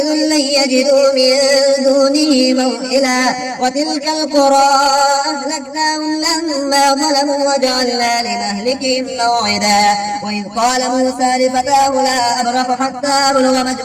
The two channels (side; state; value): both; identical; correlation 1.00